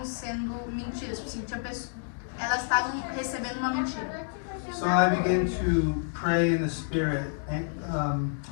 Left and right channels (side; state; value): right; silent; digital silence